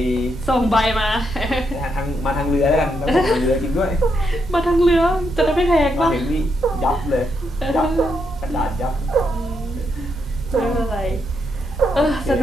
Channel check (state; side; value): normal; both; correlation 0.80